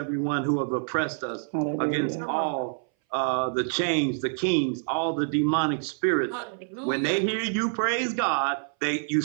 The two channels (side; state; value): left; silent; 59 dB below the other